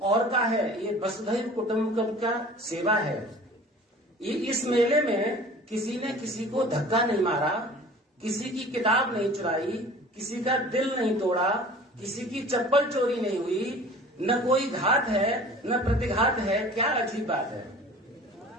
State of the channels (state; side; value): normal; both; correlation 0.44